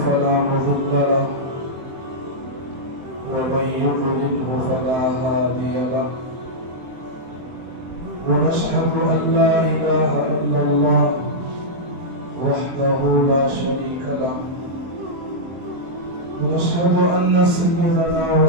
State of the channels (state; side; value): late; left; 23 ms